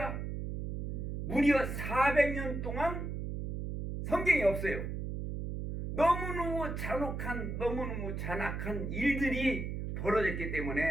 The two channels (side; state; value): right; noise; hum, 4 dB below the sound